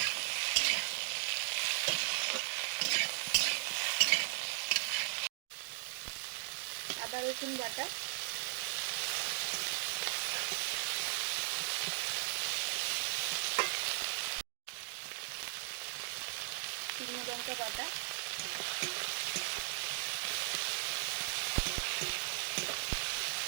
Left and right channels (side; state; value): left; silent; digital silence